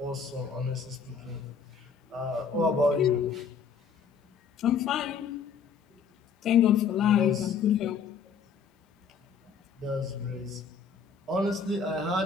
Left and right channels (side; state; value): right; quieter; 6.1 dB